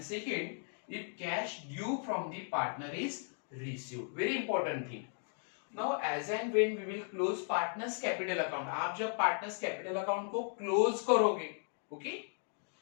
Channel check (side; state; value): right; silent; 54 dB below the other